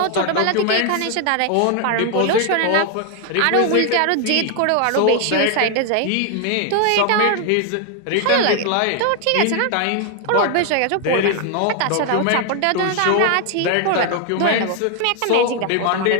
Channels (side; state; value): both; different; correlation 0.00